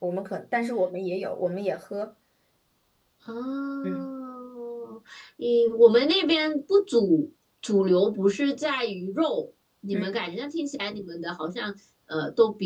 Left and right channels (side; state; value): both; identical; correlation 1.00